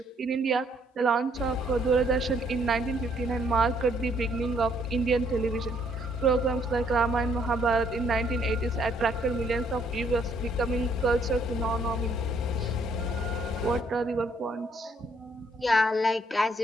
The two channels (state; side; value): normal; both; correlation 0.67